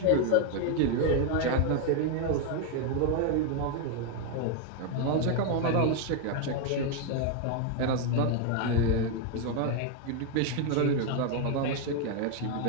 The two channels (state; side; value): different; both; correlation 0.01